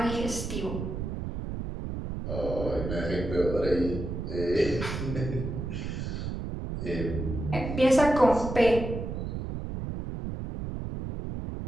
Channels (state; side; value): noise; right; rumble, 5 dB below the sound